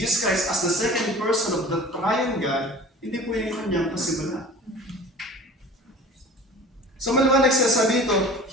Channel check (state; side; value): normal; both; correlation 0.42